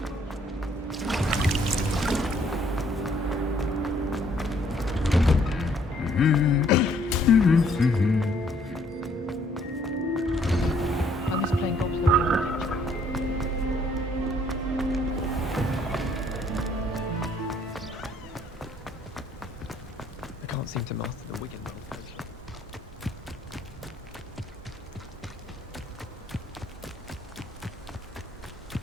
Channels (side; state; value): both; normal; correlation 0.65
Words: I was playing golf with the I can't seem to master the Wigan roll coach.